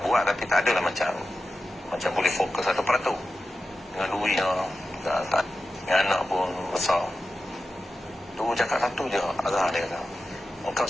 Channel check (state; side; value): normal; both; correlation 0.92